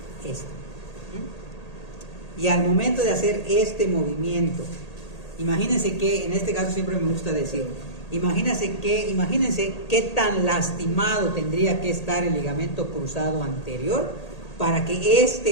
esto. Y al momento de hacer este movimiento, imagínense que, en este caso siempre me gusta decir, imagínense qué tan lastimado tendría que estar el ligamento cruzado anterior para que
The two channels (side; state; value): right; late; 1.8 ms